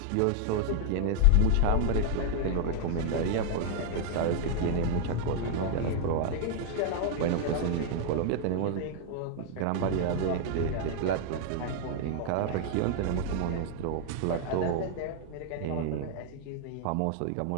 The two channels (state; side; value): different; both; correlation 0.00